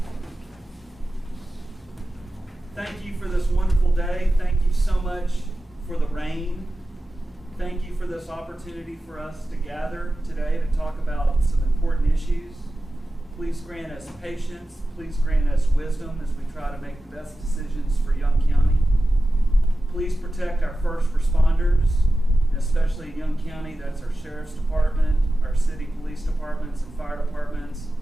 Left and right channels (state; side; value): normal; both; correlation 0.93